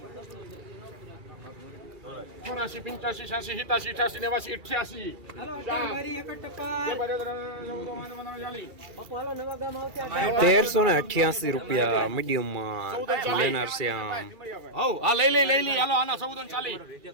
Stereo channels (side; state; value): left; late; 2.4 ms